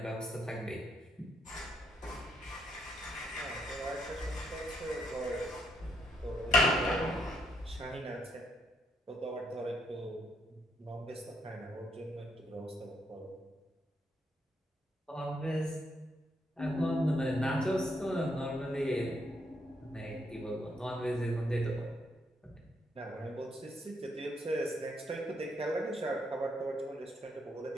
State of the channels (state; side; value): normal; both; correlation 0.74